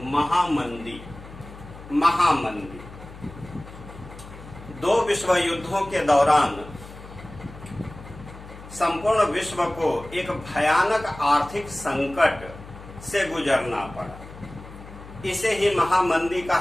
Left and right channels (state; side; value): noise; left; hum, 16 dB below the sound